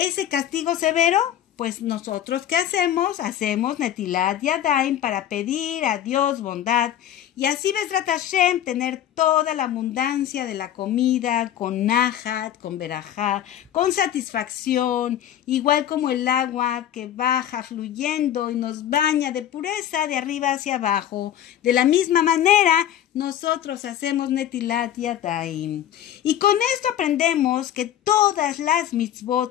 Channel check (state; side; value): quieter; right; 11.1 dB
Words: castigo severo. Pues nosotros, ¿qué hacemos? Hacemos Netilat Yadayim para pedir a Dios bondad y así Bezrat Hashem tener toda la abundancia de la comida con nahat, con berajá, con satisfacción, igual como el agua que baja fluyendo y nos baña de pureza de arriba hacia abajo. De la misma manera, nosotros hacemos Netilat Yadayim. Y con esto aprendemos que todas las